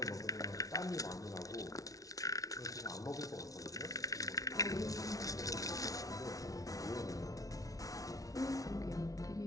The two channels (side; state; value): right; late; 0.17 ms